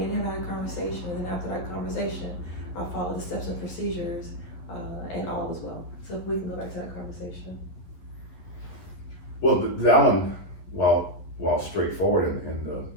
him had a conversation, and then after that conversation, I followed the steps and procedures, and all was well. So if we can go back to that conversation. Well, that one, while straightforward in the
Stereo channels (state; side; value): late; right; 11 ms